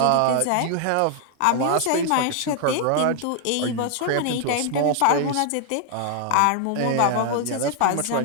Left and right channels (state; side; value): different; both; correlation 0.00